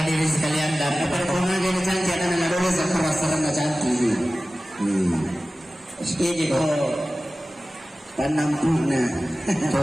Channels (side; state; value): both; normal; correlation 0.96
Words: hadirin sekalian dan Performa dia cantik akan ada dulu seperasaran cantik. ini kok Tanam puna.